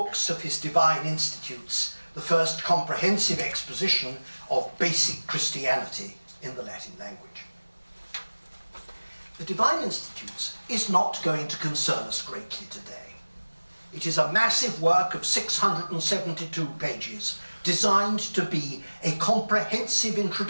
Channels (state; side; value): inverted; both; correlation -1.00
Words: of his Divine Institutes, the first comprehensive exposition of basic Christianity in the Latin language. The Divine Institutes is not going to concern us greatly today. It is a massive work of 672 pages, designed to be a comprehensive